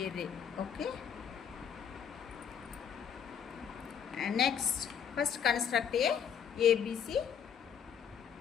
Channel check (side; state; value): right; quieter; 7.9 dB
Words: ray. Okay. And next, first construct a ABC